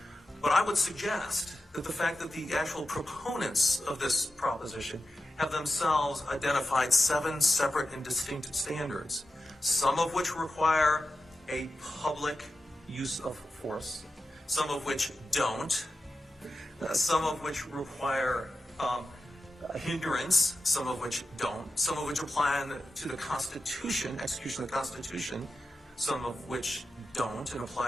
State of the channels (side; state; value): both; normal; correlation 0.92